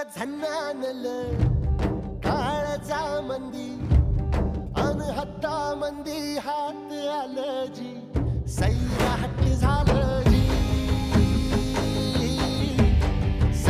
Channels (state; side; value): identical; both; correlation 1.00